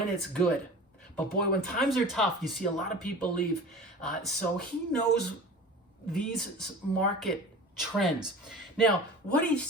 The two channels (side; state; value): both; normal; correlation 0.38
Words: it's good. But boy, when times are tough, you see a lot of people leave. So he knows these market trends. Now, what he